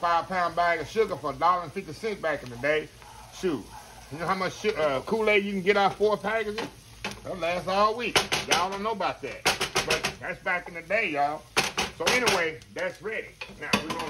bag of sugar for $1.50 back in the day. Shoot. You know how much Kool-Aid you can get out 4 packages? That'll last all week. Y'all don't know about that. But that's back in the day, y'all. So anyway, that's ready. Now we're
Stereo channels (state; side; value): identical; both; correlation 1.00